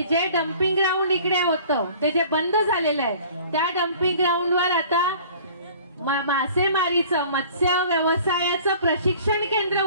जे डम्पिंग ग्राउंड इकडे होतं ते जे बंद झालेलं आहे, त्या डम्पिंग ग्राउंडवर आता मासेमारीचं, मत्स्य व्यवसायाचं प्रशिक्षण केंद्र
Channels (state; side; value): inverted; both; correlation -0.48